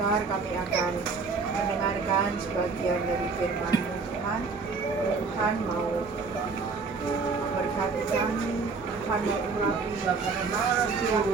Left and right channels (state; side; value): quieter; left; 4.6 dB